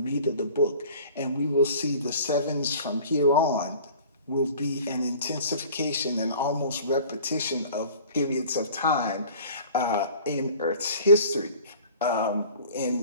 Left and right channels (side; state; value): both; inverted; correlation -0.46